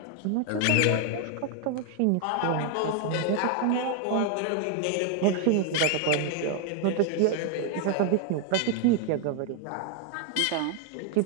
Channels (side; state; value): both; different; correlation 0.01